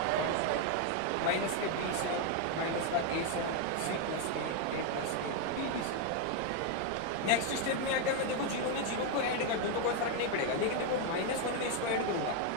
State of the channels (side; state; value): both; different; correlation 0.01